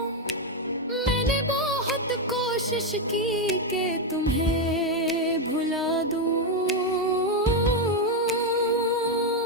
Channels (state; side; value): normal; both; correlation 0.05